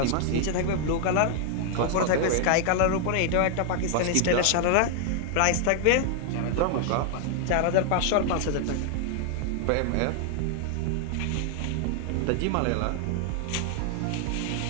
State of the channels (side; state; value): both; different; correlation 0.00